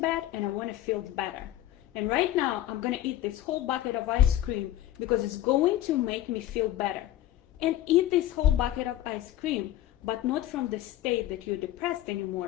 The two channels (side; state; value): right; quieter; 13.5 dB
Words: bad and I want to feel better. And right now, I'm going to eat this whole bucket of ice cream because it's going to make me feel better. And eat this whole bucket of ice cream, but not from the state that you're depressed